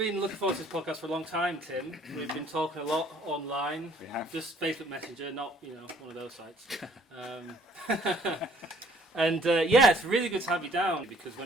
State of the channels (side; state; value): both; normal; correlation 0.60